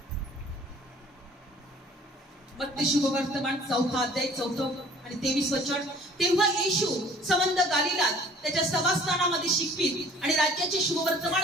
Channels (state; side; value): normal; both; correlation 0.52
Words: मत्ते शुभवर्तमान 4 अध्याय 4 आणि 23 वचन. तेव्हा येशू संबंध गालिलात त्याच्या सभास्थानामध्ये शिकवीत आणि राज्याचे शुभवर्तमान